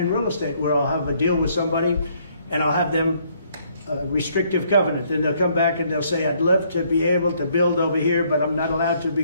real estate where I'll have a deal with somebody and I'll have them restrictive covenant. Then they'll come back and they'll say, I'd love to be able to build over here, but I'm not allowed to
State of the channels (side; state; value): both; inverted; correlation -0.67